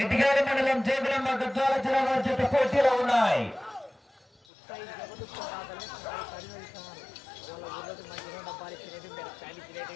ఇటుకాల మండలం జోగులాంబ గద్వాల జిల్లా వారి చేత పోటీలో ఉన్నాయి. డబ్బాలు ఇచ్చినవి ప్యాన్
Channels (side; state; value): right; drops out; at 4.4 s